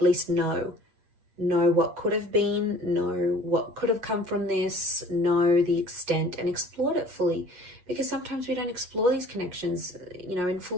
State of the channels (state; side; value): late; left; 8.2 ms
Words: know what could have been, know what could have come from this, know the extent and explore it fully. Because sometimes we don't explore these connections, in